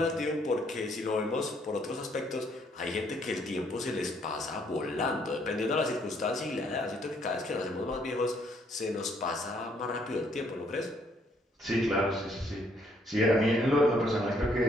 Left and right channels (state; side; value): normal; both; correlation 0.68